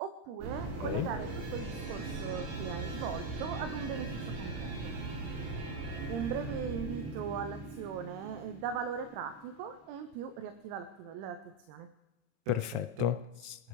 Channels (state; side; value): late; left; 26 ms